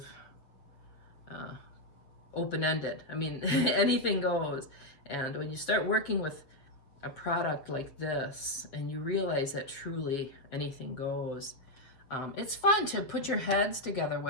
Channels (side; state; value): right; late; 7.1 ms